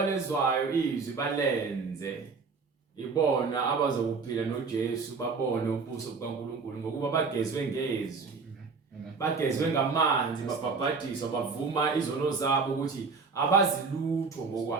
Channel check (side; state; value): left; quieter; 4.8 dB